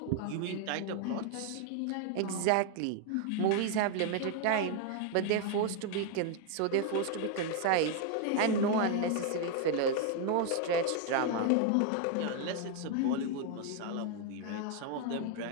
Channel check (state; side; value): different; both; correlation 0.00